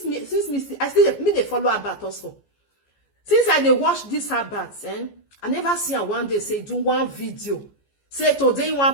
me I still me they follow about also. Since I they watch this about, I never see her one day say do one video. Say today you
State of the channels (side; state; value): right; late; 14 ms